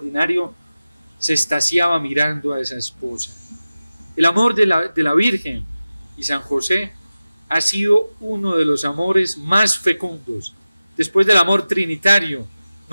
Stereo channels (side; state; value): both; inverted; correlation -0.96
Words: se extasiaba mirando a esa esposa. El amor de la Virgen y San José ha sido uno de los amores más fecundos. Después del amor trinitario,